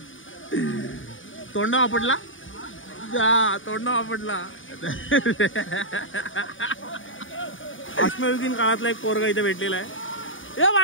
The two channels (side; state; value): right; late; 0.57 ms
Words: तोंडा आपटला. अश्मयुगीन काळातला एक पोरगा इथे भेटलेला आहे. ए